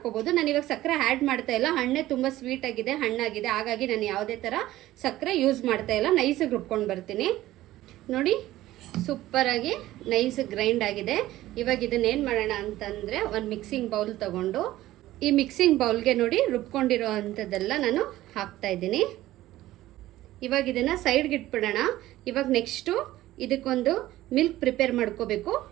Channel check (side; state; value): left; quieter; 15.5 dB